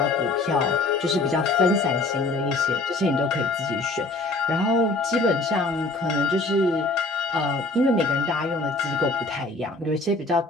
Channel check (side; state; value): right; quieter; 3.1 dB